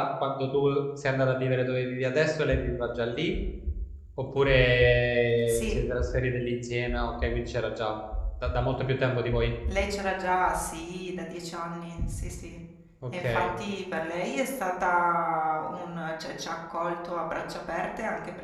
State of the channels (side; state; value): both; identical; correlation 1.00